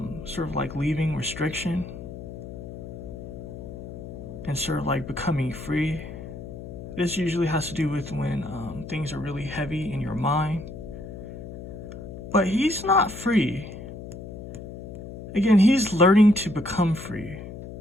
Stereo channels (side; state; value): left; noise; hum, 11 dB below the sound